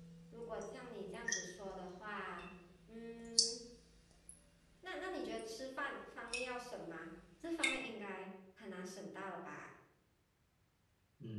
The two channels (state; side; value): identical; both; correlation 1.00